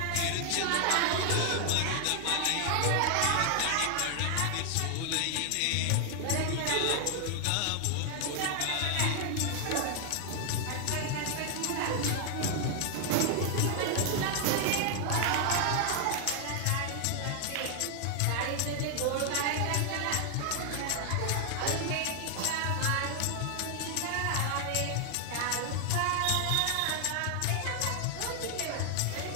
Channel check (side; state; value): both; different; correlation 0.00